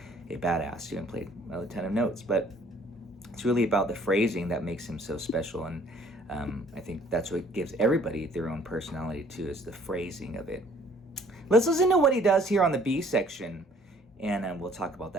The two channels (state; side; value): normal; both; correlation 0.58